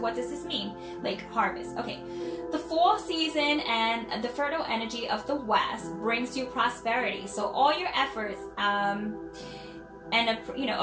does this mean? Lake, harvest. Okay. The fall season and the fertile energy of the West brings you prosperity. So all your efforts and you know,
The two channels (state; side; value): identical; both; correlation 1.00